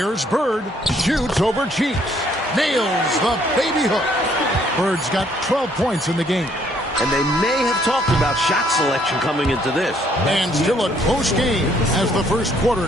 Bird. Shoots over Cheeks. Nails the baby hook. Bird's got 12 points in the game. And they may have talked about shot selection coming into this. And still a close game as the first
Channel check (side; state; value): both; normal; correlation 0.66